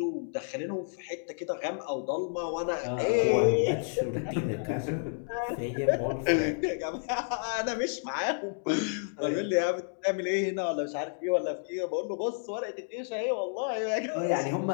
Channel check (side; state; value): right; silent; digital silence